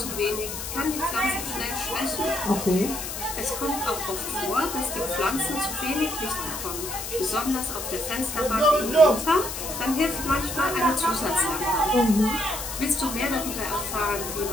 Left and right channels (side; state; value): left; noise; hiss, 6 dB below the sound